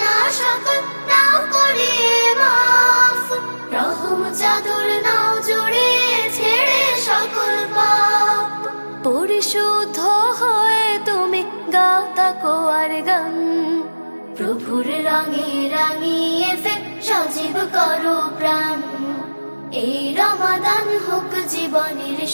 সকল নাও করে মাফ, রহম চাদর নাও জড়িয়ে ছেড়ে সকল পাপ। পরিশুদ্ধ হয়ে তুমি গাও তাকওয়ার গান। প্রভুর রঙে রাঙিয়ে ফের সজীব করো প্রাণ। এই রমাদান হোক জীবনের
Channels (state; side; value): inverted; both; correlation -1.00